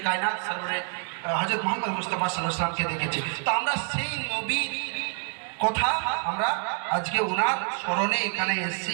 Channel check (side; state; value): left; quieter; 37.2 dB